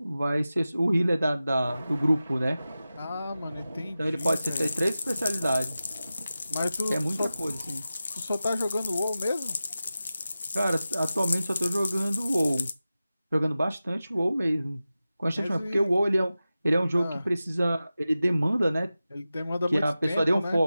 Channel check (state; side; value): inverted; both; correlation -0.94